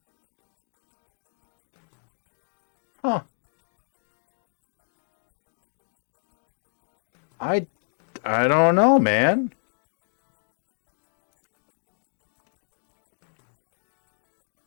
Huh. I don't know, man.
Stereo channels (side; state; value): right; silent; digital silence